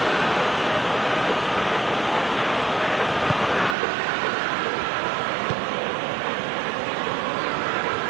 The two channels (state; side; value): drops out; left; at 3.8 s